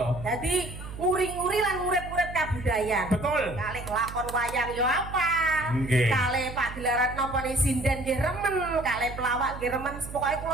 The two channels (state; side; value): noise; right; hum, 11 dB below the sound